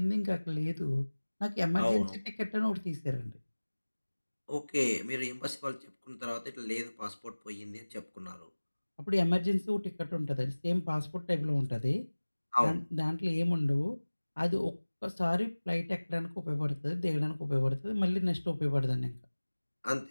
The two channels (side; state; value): both; inverted; correlation -1.00